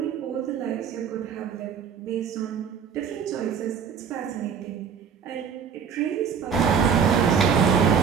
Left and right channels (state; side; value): quieter; left; 6.8 dB